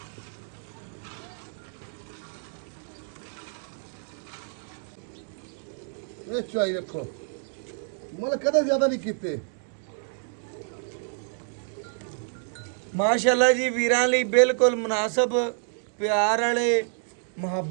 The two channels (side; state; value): left; silent; digital silence